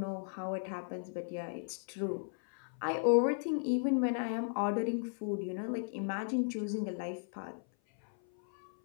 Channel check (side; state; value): right; silent; 54 dB below the other